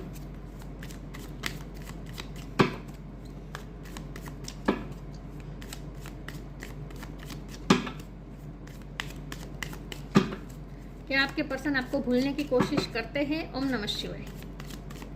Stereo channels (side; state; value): both; identical; correlation 1.00